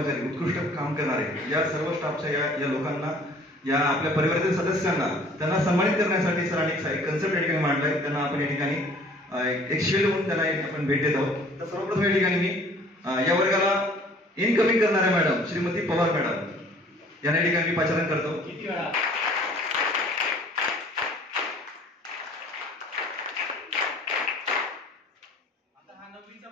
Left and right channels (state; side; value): normal; both; correlation 0.53